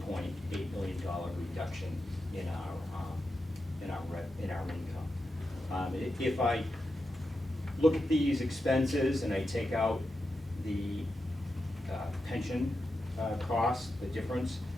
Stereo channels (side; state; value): both; normal; correlation 0.88